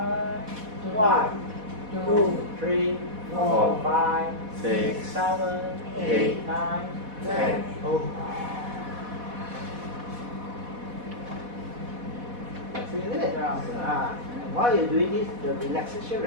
1, 2, 3, 4, 5, 6, 7, 8, 9, 10. Isn't it? And while you're doing this, the relaxation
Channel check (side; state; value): left; late; 4.1 ms